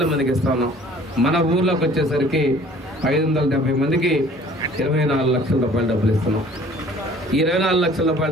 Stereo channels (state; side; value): normal; both; correlation 0.52